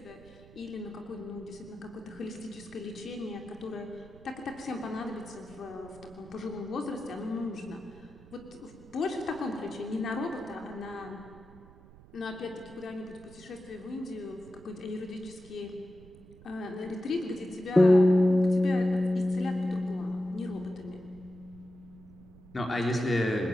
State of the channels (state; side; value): noise; right; rumble, 21 dB below the sound